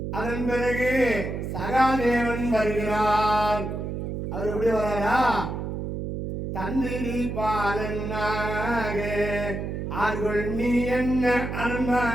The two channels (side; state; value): right; noise; hum, 4 dB below the sound